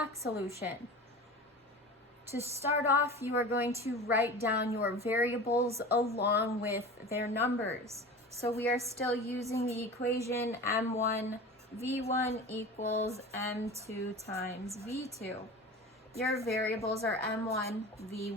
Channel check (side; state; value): both; normal; correlation 0.34